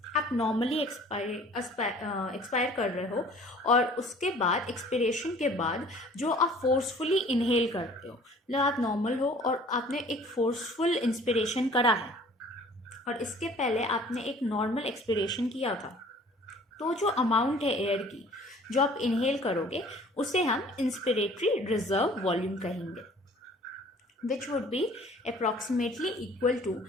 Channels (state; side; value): normal; both; correlation 0.51